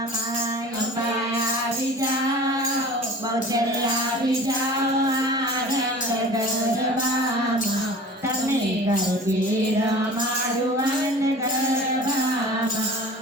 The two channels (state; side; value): normal; both; correlation 0.41